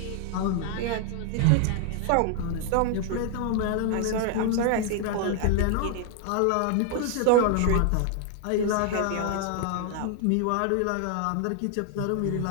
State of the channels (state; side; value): different; both; correlation 0.00